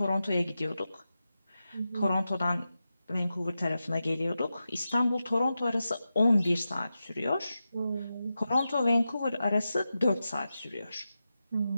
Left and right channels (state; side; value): inverted; both; correlation -0.91